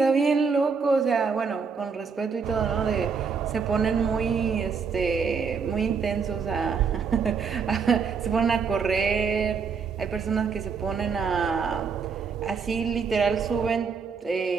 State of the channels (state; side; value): quieter; left; 5.7 dB